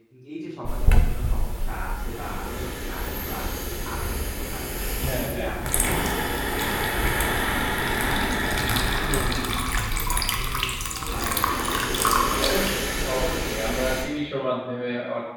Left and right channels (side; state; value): both; identical; correlation 1.00